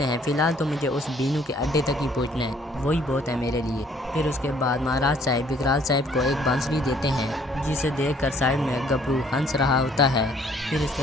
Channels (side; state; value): both; normal; correlation 0.61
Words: हैं फ़िलहाल तो मुझे उस बीनू के अड्डे तक ही पहुंचना है, वही बहुत है मेरे लिए। फिर उसके बाद महाराज साहब विकराल साहब को एक बांसुरी देते हैं जिसे देखकर साइड में गबरू हंस रहा होता है। फिर इसके